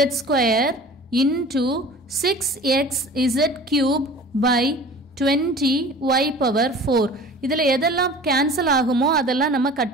square into 6x z cube by 20 y power 4. இதில் எதெல்லாம் கேன்சல் ஆகுமோ அதெல்லாம் நம்ம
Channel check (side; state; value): both; normal; correlation 0.42